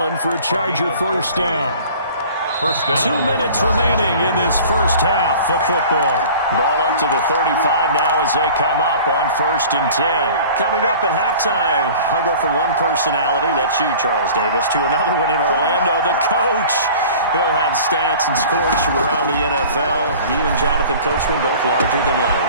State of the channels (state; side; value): inverted; both; correlation -0.44